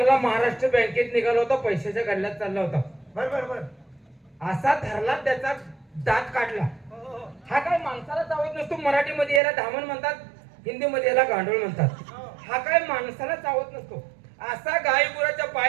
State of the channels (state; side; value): drops out; left; at 9.4 s